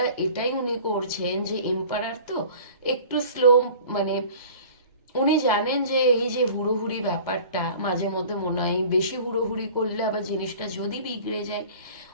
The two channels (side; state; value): both; inverted; correlation -0.44